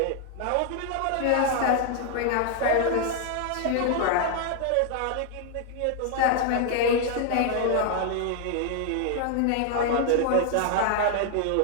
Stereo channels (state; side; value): different; both; correlation 0.00